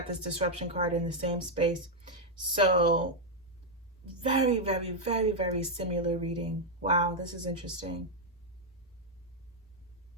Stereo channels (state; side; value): normal; both; correlation -0.01